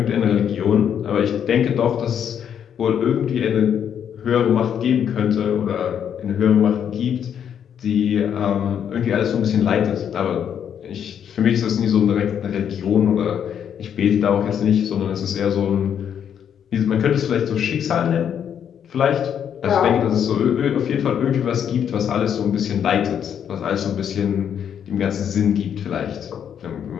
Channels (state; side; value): quieter; right; 8.6 dB